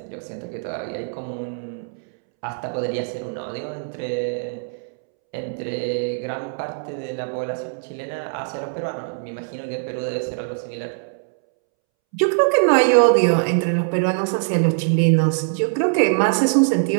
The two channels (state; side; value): silent; left; 64 dB below the other